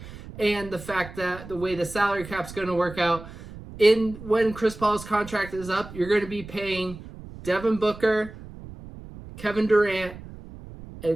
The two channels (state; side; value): noise; right; rumble, 15 dB below the sound